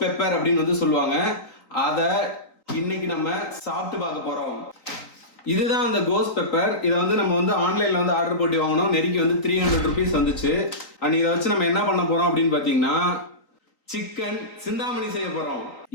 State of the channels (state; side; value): late; right; 3.9 ms